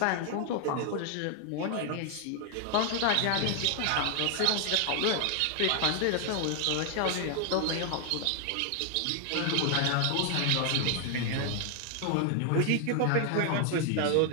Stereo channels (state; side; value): different; both; correlation 0.00